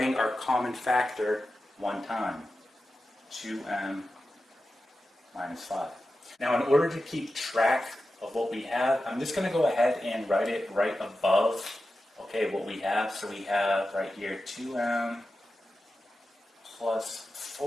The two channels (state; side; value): normal; both; correlation 0.92